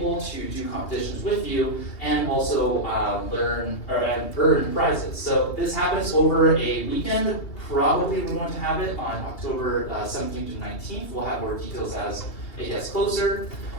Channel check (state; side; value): late; right; 2.9 ms